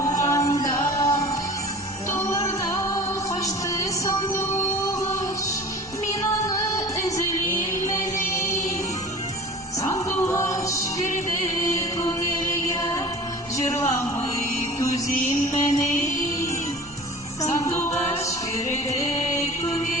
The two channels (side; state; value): both; normal; correlation 0.40